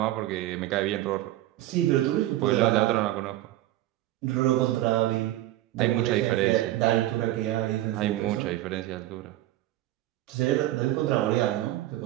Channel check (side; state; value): left; quieter; 15.2 dB